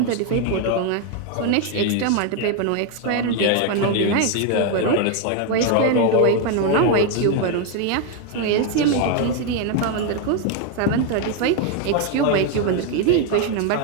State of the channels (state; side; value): different; both; correlation 0.01